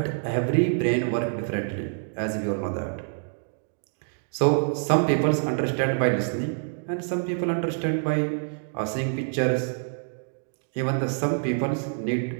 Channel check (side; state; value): left; silent; digital silence